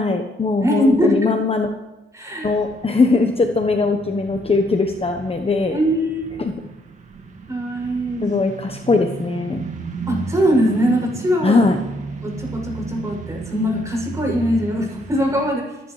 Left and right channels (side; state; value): both; normal; correlation 0.71